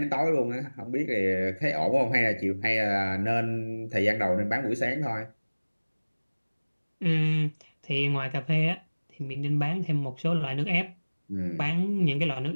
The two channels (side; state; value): both; inverted; correlation -1.00